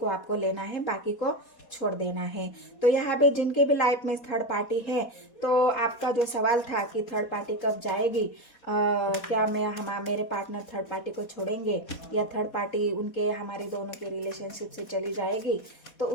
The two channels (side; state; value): right; late; 4.2 ms